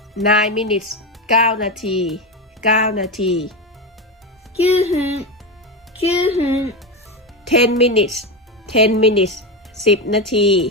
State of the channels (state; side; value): normal; both; correlation 0.16